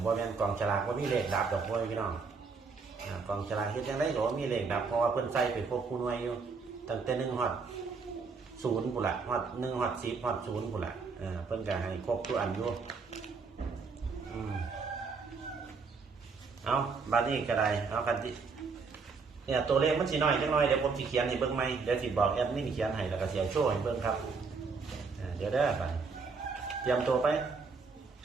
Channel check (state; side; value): quieter; left; 4.8 dB